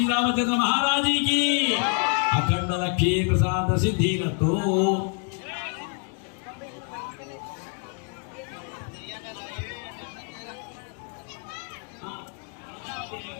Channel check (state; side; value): quieter; right; 39.2 dB